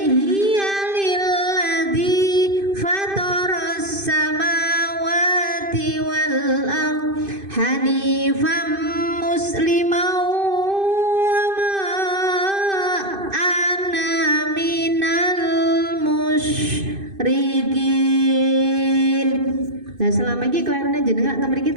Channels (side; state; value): left; late; 2.5 ms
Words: lilladzi fataras samawati wal ard hanifan musliman wa Nah selama ini kelairane jenengan teng mriki